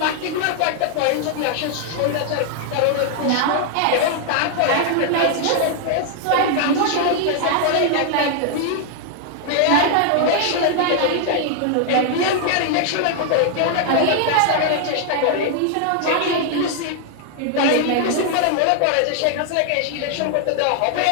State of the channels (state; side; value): different; both; correlation 0.00